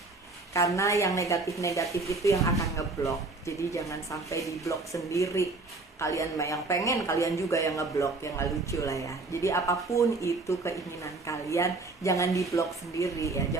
Karena yang negatif-negatif itu yang akan ngeblok. Jadi jangan sampai diblok sendiri. Kalian yang pengen, kalian juga yang ngeblok, yang gak lucu lah ya. Jadi apapun itu keinginan kalian, jangan diblok sendiri ya.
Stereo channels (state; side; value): quieter; left; 3.5 dB